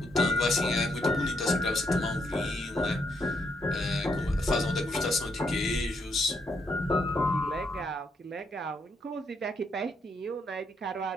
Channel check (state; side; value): normal; both; correlation 0.76